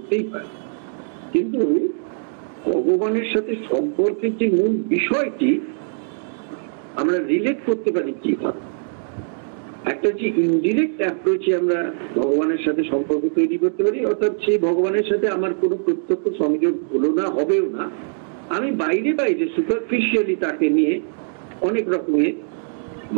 পারে। কিন্তু ভগবানের সাথে সম্পর্কের যে মূল বিষয়টি আমরা রিলেট করতে পারি কিভাবে, একটা যে ইনডিরেক্ট অ্যাপ্রোচে আমরা ভগবানের সাথে সম্পর্ক তৈরি করতে পারি, অর্থাৎ সেই ভগবানের সাথে আমার কোনো প্রত্যক্ষ সংযোগ হলো না, হবেও না, আমি বাইরে বাইরে সুপারফিশিয়ালি তাকে নিয়ে অনেক রকমের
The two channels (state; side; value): silent; left; digital silence